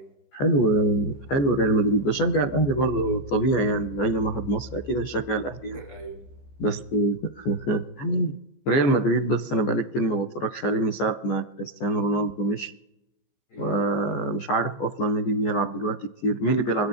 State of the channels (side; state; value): right; late; 14 ms